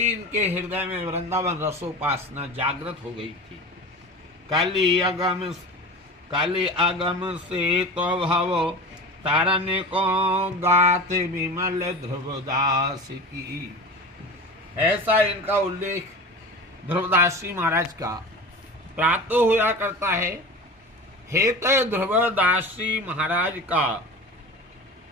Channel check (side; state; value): both; normal; correlation 0.32